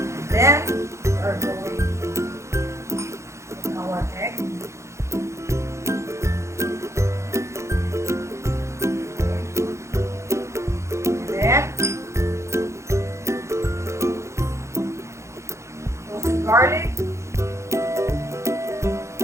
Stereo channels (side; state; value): left; late; 0.14 ms